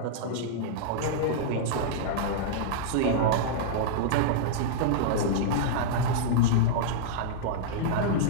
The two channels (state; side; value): different; both; correlation -0.02